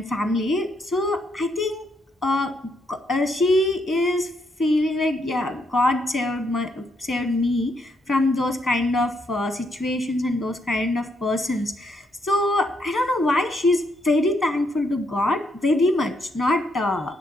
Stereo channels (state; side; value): normal; both; correlation 0.76